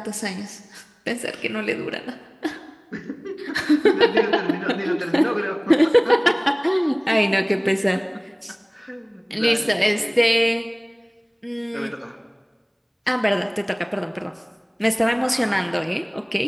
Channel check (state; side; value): identical; both; correlation 1.00